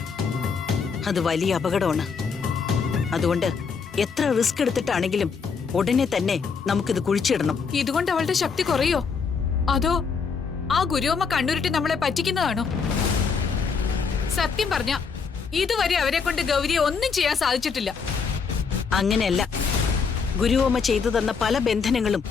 അത് വലിയ അപകടമാണ്. അതുകൊണ്ട് എത്ര റിസ്ക് എടുത്തിട്ടാണെങ്കിലും ഉടനെ തന്നെ നമുക്കിത് കുഴിച്ചിടണം. ഇതുകൊണ്ട് അവളുടെ ശക്തി കുറയോ, അതോ ആ ഗുരുവമ്മ കണ്ണുരുട്ടി നമ്മളെ പറ്റിക്കുന്നതാണോ? സത്യം പറഞ്ഞ ഇതുവരെ അവരെ കൊണ്ട് ഗൗരിയെ ഒന്നും ചെയ്യാൻ സാധിച്ചിട്ടില്ല. അങ്ങനെയല്ല, ഗുരുവമ്മ ചെയ്തു തന്ന പല ബന്ധനങ്ങളും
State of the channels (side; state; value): right; quieter; 5.6 dB